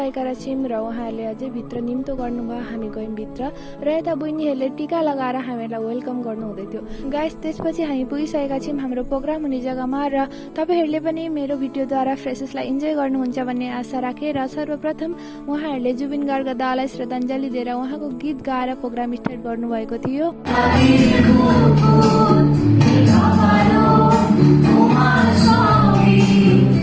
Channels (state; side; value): identical; both; correlation 1.00